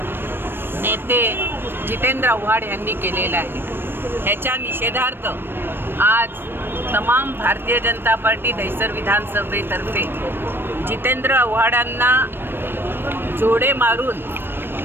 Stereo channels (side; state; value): left; late; 0.099 ms